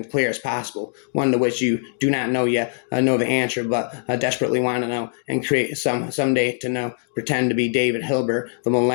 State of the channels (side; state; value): right; silent; digital silence